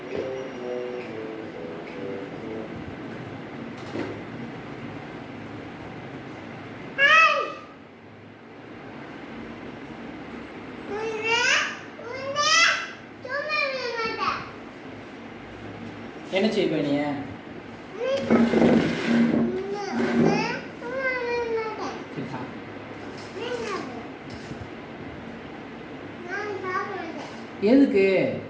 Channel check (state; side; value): identical; both; correlation 1.00